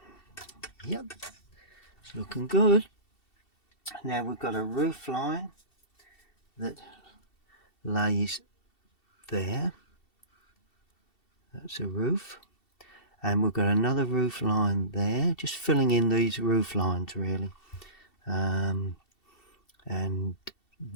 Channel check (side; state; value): right; late; 2.7 ms